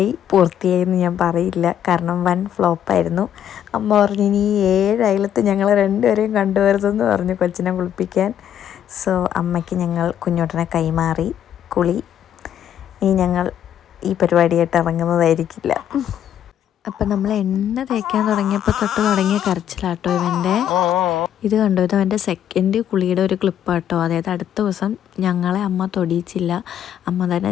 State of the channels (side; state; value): right; quieter; 10.0 dB